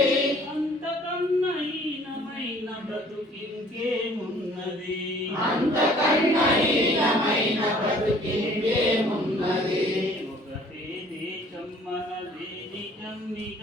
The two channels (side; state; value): both; normal; correlation 0.55